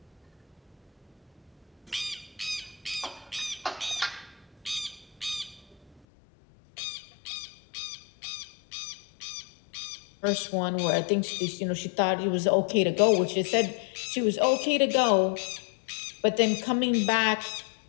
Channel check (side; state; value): right; drops out; at 6.0 s